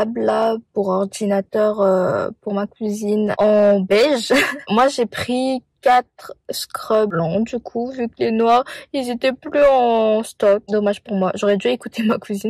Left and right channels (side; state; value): both; identical; correlation 1.00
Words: là pour ordinateur pour ma cousine en beige. Moi, j'ai pris 4 scrubs blancs du coup, vu que les noirs ils étaient plus en stock. Dommage pour moi, j'aurais dû écouter ma